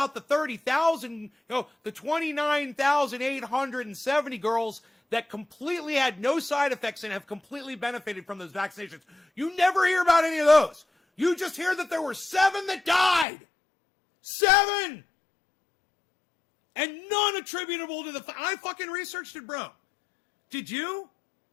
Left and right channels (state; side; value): drops out; right; at 13.2 s